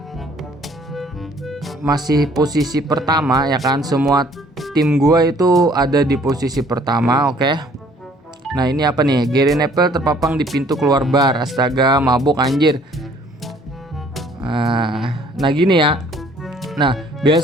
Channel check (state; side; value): normal; both; correlation 0.58